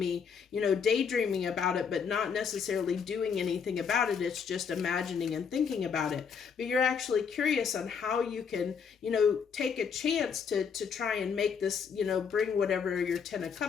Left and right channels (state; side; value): quieter; right; 6.5 dB